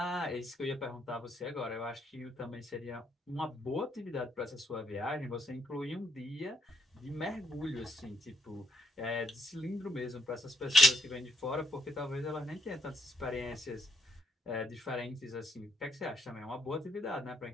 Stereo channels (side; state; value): both; normal; correlation 0.73